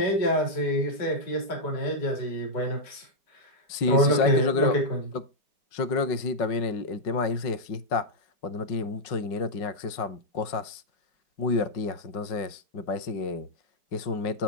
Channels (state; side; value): late; right; 5.4 ms